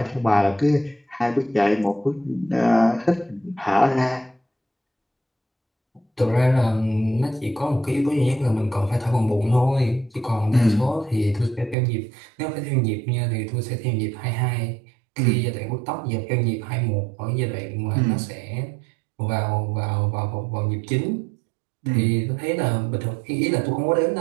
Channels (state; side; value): drops out; left; at 11.8 s